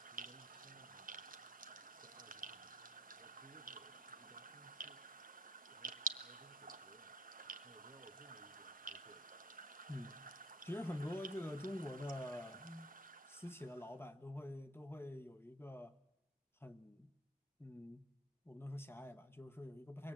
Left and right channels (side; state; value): both; normal; correlation 0.53